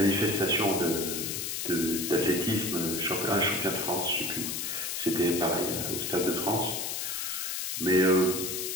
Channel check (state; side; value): noise; left; hiss, 3 dB below the sound